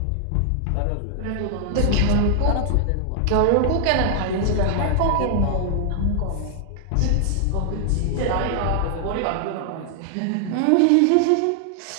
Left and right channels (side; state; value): both; different; correlation 0.00